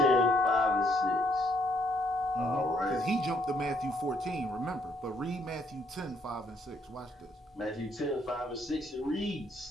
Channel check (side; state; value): both; normal; correlation 0.69